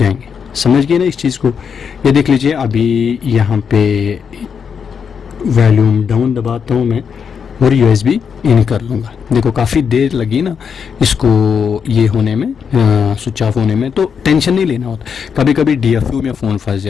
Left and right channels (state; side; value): quieter; right; 6.7 dB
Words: समझ गए ना इस चीज़ को। ये देख लीजिए, अभी यहाँ पे वॉल्यूम डाउन दबाता हूँ मैं और USB इन कर लूँगा। देखो काफ़ी देर लगी ना इसको ये होने में, स्विच ऑफ होने में, तो टेंशन नहीं लेना होता। कभी कभी DFU में फ़ोन फंस